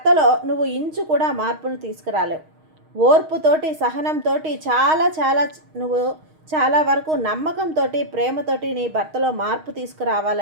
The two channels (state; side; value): late; left; 6.4 ms